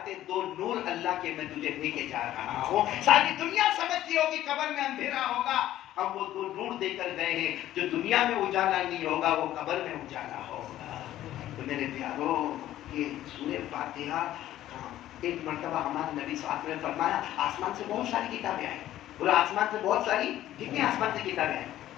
2 نور اللہ کے میں تجھے دے کے جا رہا ہوں. ساری دنیا سمجھتی ہوگی قبر میں اندھیرا ہوگا, ہم وہ 2 نور دے کر گئے ہیں جو دنیا میں اجالا نہیں ہوگا وہ قبر میں اجالا ہوگا. تو میرے پیارو یہ سورہ فاتحہ ایک مرتبہ ہمارے نبی صلی اللہ علیہ وسلم نے فرمایا آسمان سے بہت ساری کتابیں آئیں. بولو آسمان سے بہت ساری, کتنی آسمان سے کتابیں آئیں؟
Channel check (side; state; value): right; quieter; 13.4 dB